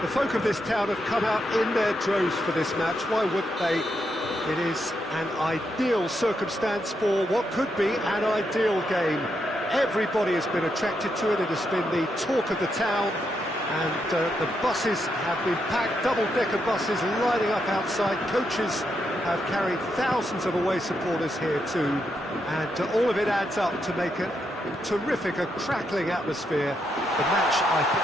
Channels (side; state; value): both; normal; correlation 0.81